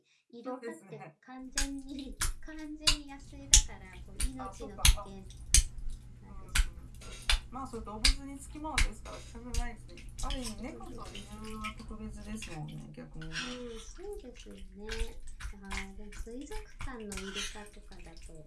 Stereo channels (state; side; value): identical; both; correlation 1.00